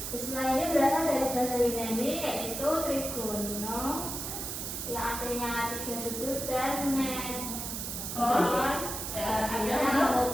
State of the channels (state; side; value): noise; right; hiss, 5 dB below the sound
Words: Istilah ini berasal dari bahasa Yunani, yaitu trigono, yang artinya tiga sudut, dan metron, artinya